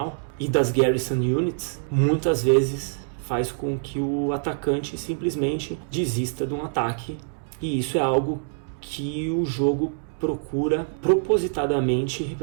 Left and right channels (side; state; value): left; silent; digital silence